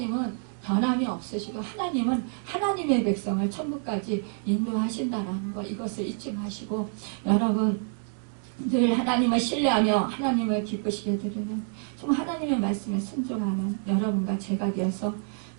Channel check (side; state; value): left; silent; 60 dB below the other